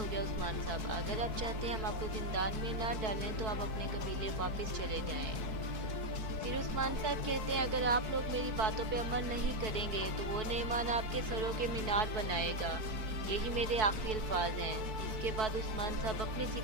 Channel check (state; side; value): late; left; 4.6 ms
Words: गया उस्मान साहब, अगर आप चाहते हैं हम आपको जिंदान में ना डालें तो आप अपने कबीले वापस चले जाएं। फिर उस्मान साहब कहते हैं अगर आप लोग मेरी बातों पे अमल नहीं करेंगे तो वो नेमान आपके सरों के मीनार बनाएगा, यही मेरे आखिरी अल्फाज हैं। इसके बाद उस्मान साहब अपने